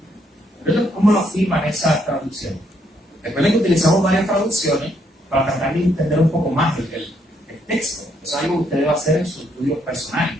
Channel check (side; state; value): both; normal; correlation 0.73